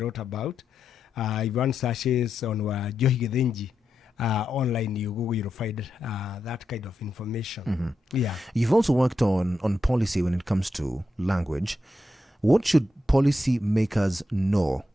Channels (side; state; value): both; normal; correlation 0.86